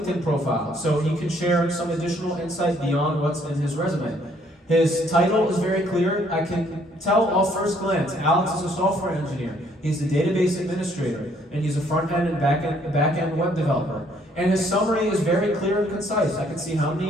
profile, so he can share some additional insight beyond what's in his resume. His title is very clear. I can tell off first glance, Alex is a software engineer. He's a database administrator, and he's a front-end and back-end web developer. And his summary is very clear and concise. I can see how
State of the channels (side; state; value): both; normal; correlation 0.65